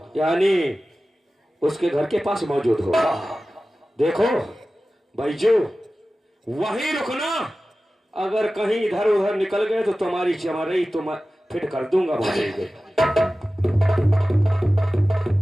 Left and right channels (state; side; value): normal; both; correlation 0.95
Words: यानी उसके घर के पास मौजूद हो? हाँ। देखो बैजू, वहीं रुकना। अगर कहीं इधर उधर निकल गए तो तुम्हारी चमारई तुम फिट कर दूंगा। बोलेंगे